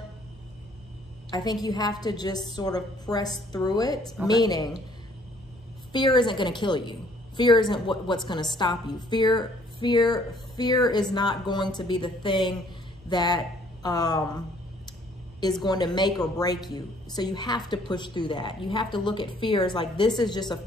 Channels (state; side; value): normal; both; correlation 0.60